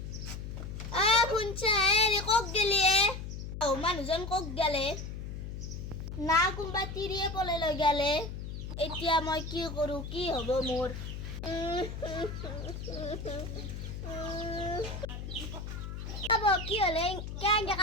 কক গেলি মানুহজন কক গেলে না কোনবা তিৰিয়ে পলে লৈ গেলে। এতিয়া মই কি কৰো, কি হব মোৰ? কি হলে কেনেকে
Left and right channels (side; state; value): left; noise; hum, 7 dB below the sound